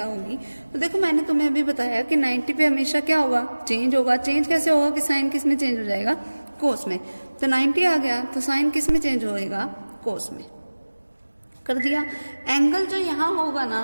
होगी, तो देखो मैंने तुम्हें अभी बताया कि 90 पे हमेशा क्या होगा? चेंज होगा। चेंज कैसे होगा कि साइन किस में चेंज हो जाएगा? कोस में। तो 90 आ गया तो साइन किस में चेंज होएगा? कोस में। कर दिया। एंगल जो यहाँ होगा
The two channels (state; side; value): inverted; both; correlation -1.00